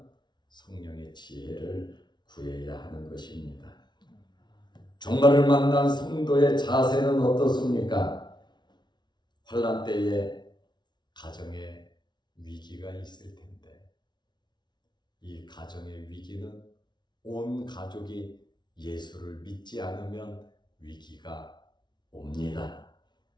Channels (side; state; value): right; late; 0.21 ms